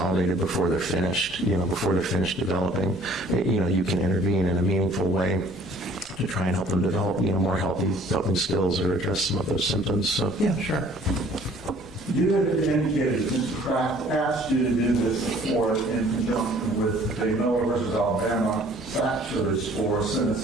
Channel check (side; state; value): both; normal; correlation 0.55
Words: before they're finished, before they're finished developing. You can intervene in a meaningful way to try and help them develop, more healthy coping skills or address some of those symptoms. So, yeah, sure. You had indicated that Mr. Kraft asked you to do this before in conjunction with the Miller versus Alabama factors for